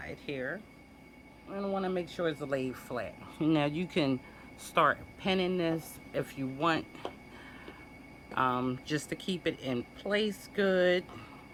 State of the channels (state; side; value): identical; both; correlation 1.00